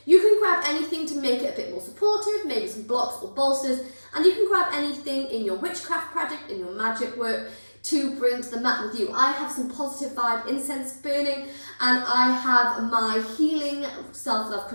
you can grab anything to make it a bit more supportive, maybe some blocks or bolsters, and you can grab anything in your witchcraft project, in your magic work, to bring to the mat with you. I have some positive vibe incense burning, and I have my healing self-love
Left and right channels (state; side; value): inverted; both; correlation -1.00